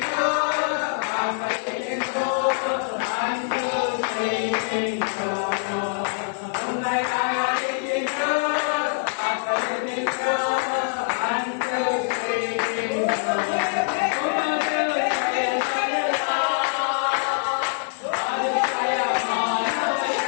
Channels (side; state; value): right; silent; digital silence